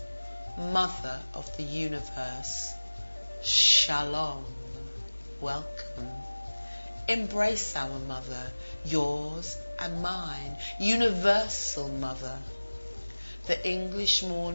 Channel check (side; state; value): both; inverted; correlation -1.00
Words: mother of the universe, shalom, welcome. Embrace our mother, yours and mine, universal mother. The English